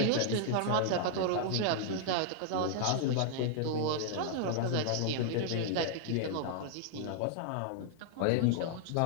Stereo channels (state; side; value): different; both; correlation -0.01